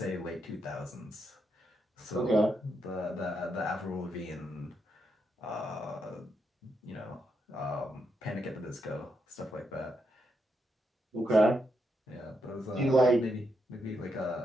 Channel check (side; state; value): both; normal; correlation 0.81